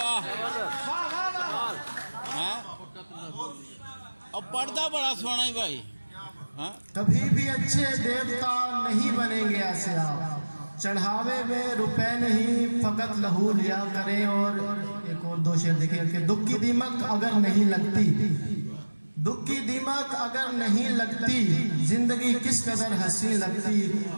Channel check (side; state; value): both; inverted; correlation -1.00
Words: और पर्दा बड़ा सोना ही भाई। हाँ? कभी भी अच्छे देवता नहीं बनेंगे ऐसे आप। चढ़ावे में रुपए नहीं फकत लहू लिया करें। और एक और दो शेर देखिए कि दुख की दीमक अगर नहीं लगती, दुख की दीमक अगर नहीं लगती, जिंदगी किस कदर हंसी लगती।